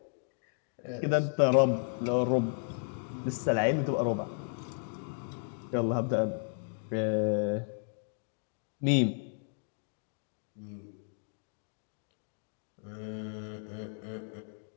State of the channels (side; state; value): right; silent; 55 dB below the other